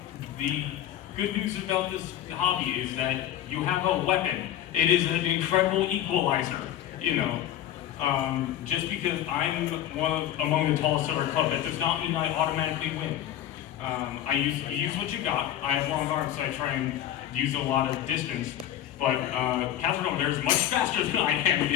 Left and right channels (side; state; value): right; quieter; 11.7 dB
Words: The good news about this hobby is that you have a weapon. It is an incredible equalizer. You know, just because I'm among the tallest of our club, that does not mean I automatically win. You use what you got. I have long arms, so I try and use a lot of distance. But Catherine over there is much faster than I am, and